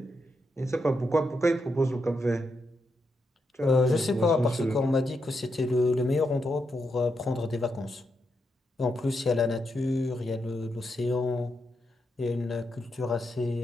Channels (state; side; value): normal; both; correlation 0.83